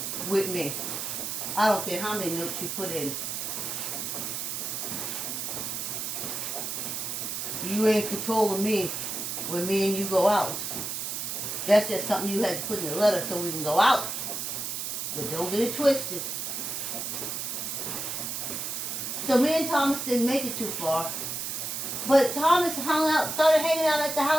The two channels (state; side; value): noise; right; hiss, 4 dB below the sound